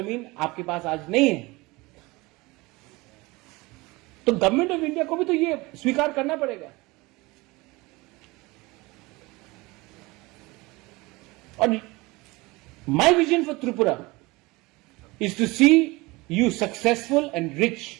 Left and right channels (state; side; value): quieter; left; 22.9 dB